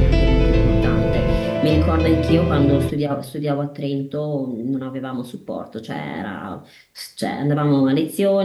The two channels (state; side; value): identical; both; correlation 1.00